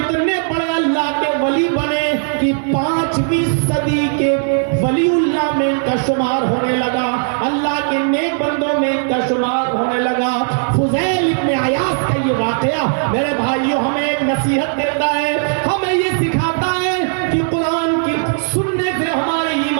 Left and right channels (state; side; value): silent; left; 64 dB below the other